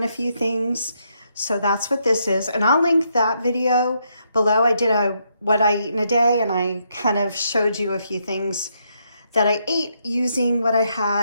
a few things. So that's what this is. And I'll link that video below. I did a what I eat in a day, and I kind of showed you a few things that I ate using what I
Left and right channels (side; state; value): both; inverted; correlation -0.77